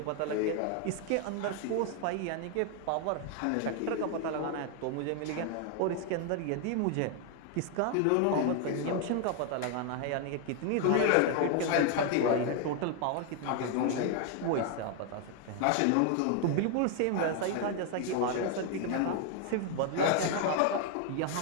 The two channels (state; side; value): different; both; correlation 0.00